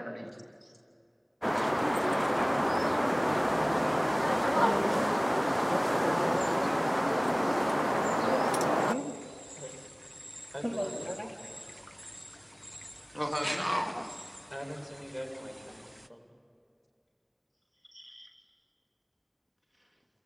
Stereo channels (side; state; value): both; identical; correlation 1.00